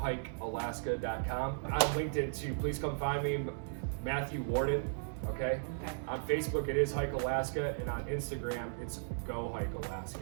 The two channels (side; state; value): left; silent; digital silence